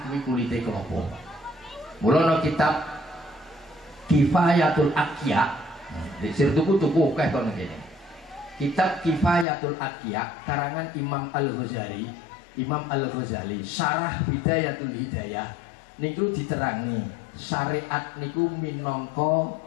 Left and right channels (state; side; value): drops out; right; at 9.5 s